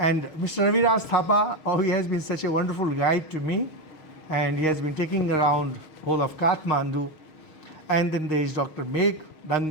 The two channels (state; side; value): late; right; 6.4 ms